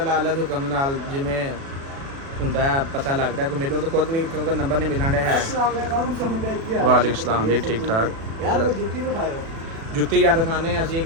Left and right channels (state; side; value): late; left; 36 ms